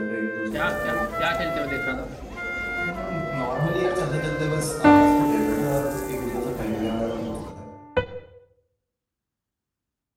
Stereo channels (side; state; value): both; identical; correlation 1.00